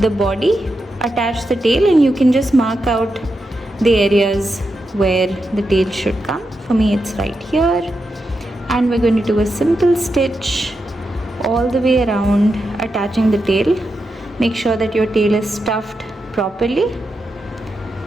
body, attach the tail, and you can just mark out the areas where the tail should come. For me it's right here. And we're going to do a simple stitch all the way around, attaching the tail. Make sure that your tail is stuffed properly.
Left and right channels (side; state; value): both; normal; correlation 0.87